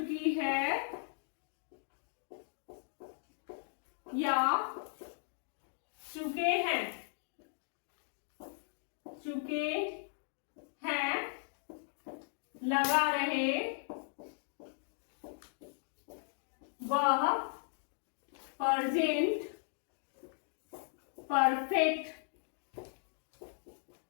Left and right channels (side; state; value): right; silent; digital silence